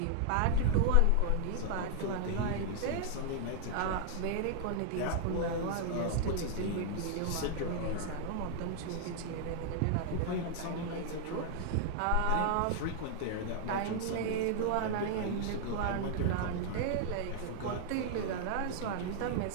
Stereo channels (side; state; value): both; different; correlation 0.00